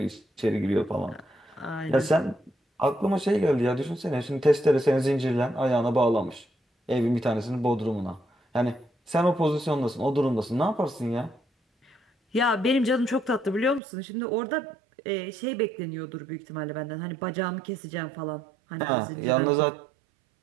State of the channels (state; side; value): drops out; left; at 13.8 s